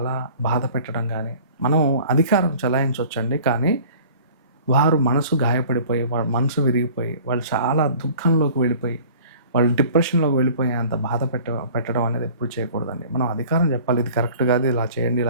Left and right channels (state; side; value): inverted; both; correlation -0.47